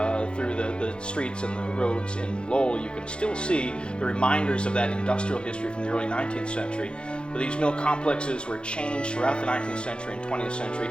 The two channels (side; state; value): right; late; 0.054 ms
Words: through the streets and the roads in Lowell, you can still see the reminders of that industrial history from the early 19th century. But these mill complexes were changed throughout the 19th century and 20th